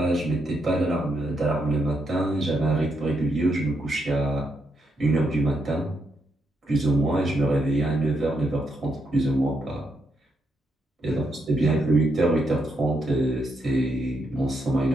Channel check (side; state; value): both; normal; correlation 0.79